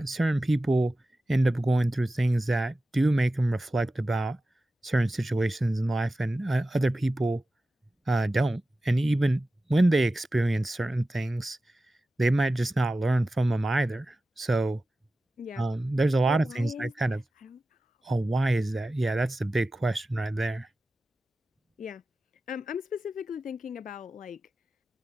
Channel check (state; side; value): normal; both; correlation 0.94